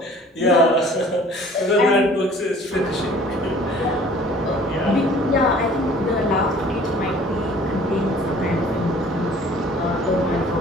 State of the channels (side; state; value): both; normal; correlation 0.51